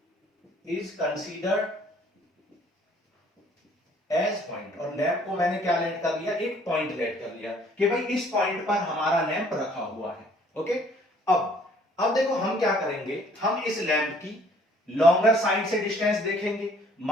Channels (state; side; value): normal; both; correlation 0.59